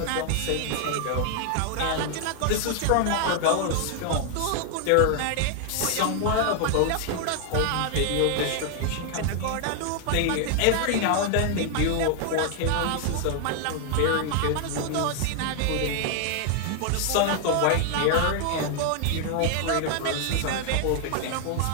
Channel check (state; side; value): different; both; correlation 0.00